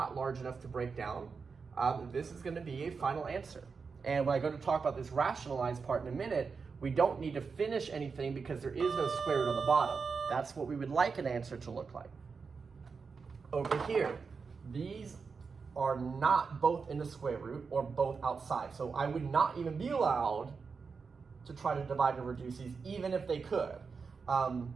large enough to break down. This is going to be a final answer. And when I go to talk about this rationalized part in a minute, we don't need to finish anything because there is no square root on the bottom. That's what we would like an answer to look like. Over here, these are not both in the square root or both outside. So I would not even be allowed to try to divide and reduce these, even if they could.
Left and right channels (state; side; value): quieter; left; 5.2 dB